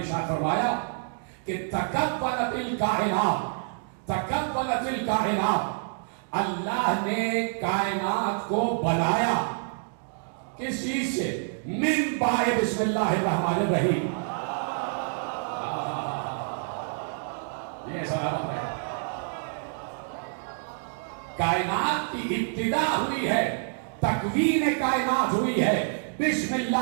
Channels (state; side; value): silent; left; digital silence